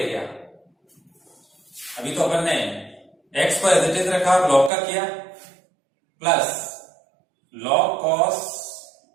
गया। अभी तो अपन ने x को एज इट इज रखा और log का किया, plus log cos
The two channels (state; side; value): drops out; left; at 4.7 s